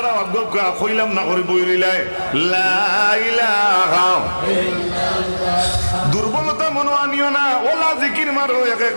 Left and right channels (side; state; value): both; inverted; correlation -1.00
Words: অজ্ঞা কইলাম না করে বই রইলাই লা ইলাহা। দুর্বলতা মনে আনিও না, ওলা জিকির মারো, এক এক